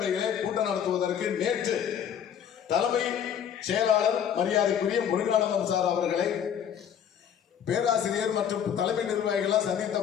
கூட்டம் நடத்துவதற்கு நேற்று தலைமை செயலாளர் மரியாதைக்குரிய முருகானந்தம் சார் அவர்களை பேராசிரியர் மற்றும் தலைமை நிர்வாகிகள் சந்தித்த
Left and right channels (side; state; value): right; quieter; 8.8 dB